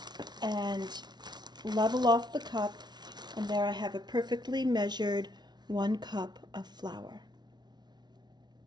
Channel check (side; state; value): left; late; 0.20 ms